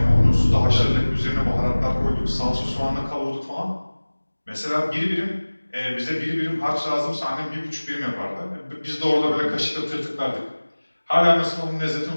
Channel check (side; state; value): both; inverted; correlation -1.00